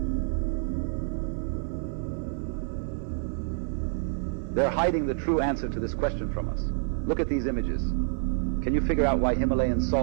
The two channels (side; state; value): left; silent; 59 dB below the other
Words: They're hiding the true answer to this question from us. Look at these images. Can you figure out why Himalayan